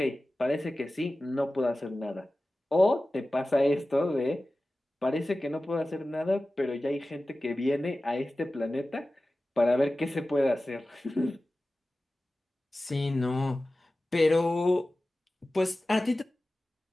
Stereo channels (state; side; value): normal; both; correlation 0.96